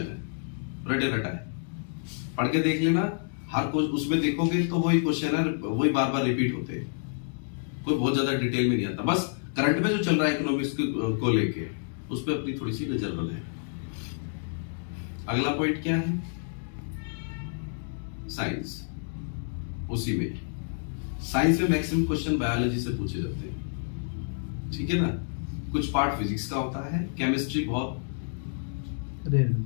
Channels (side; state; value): right; silent; digital silence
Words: है, रटे रटा है, पढ़ के देख लेना। हर कुछ उसमें देखोगे तो वही क्वेश्चन है, वही बार बार रिपीट होते हैं, कोई बहुत ज्यादा डिटेल में नहीं आता। बस करंट में जो चल रहा है इकोनॉमिक्स को लेके, उस पर अपनी थोड़ी सी नजर बनाए। अगला पॉइंट क्या है? साइंस। उसी में साइंस में मैक्सिमम क्वेश्चन बायोलॉजी से पूछे जाते हैं, ठीक है ना। कुछ पार्ट फिजिक्स का होता है, केमिस्ट्री बहुत रेयर,